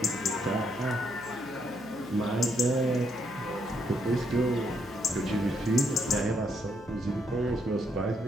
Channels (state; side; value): noise; right; hum, 23 dB below the sound